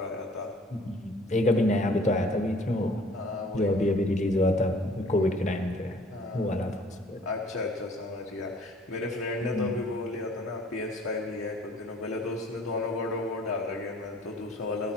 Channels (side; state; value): both; normal; correlation 0.54